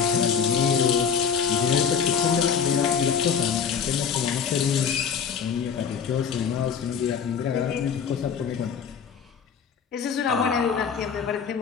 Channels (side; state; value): right; quieter; 7.1 dB